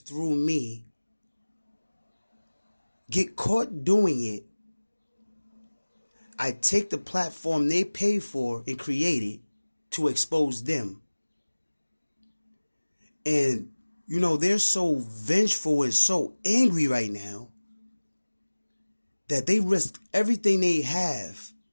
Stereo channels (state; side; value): inverted; both; correlation -1.00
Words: me, get caught doing it? I take the platform they pay for and create it to expose them. And, you know, they're so vengeful and so angry right now that they risk everything they have